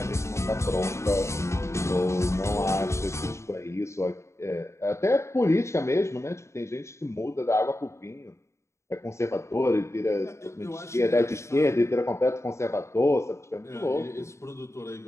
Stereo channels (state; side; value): late; right; 0.14 ms